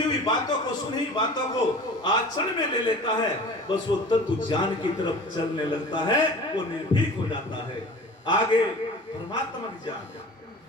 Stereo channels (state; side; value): normal; both; correlation 0.40